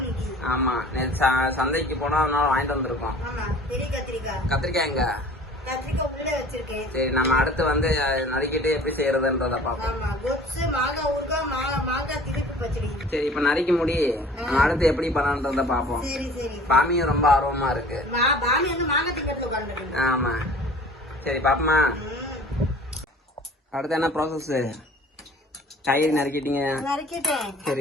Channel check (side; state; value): both; normal; correlation 0.47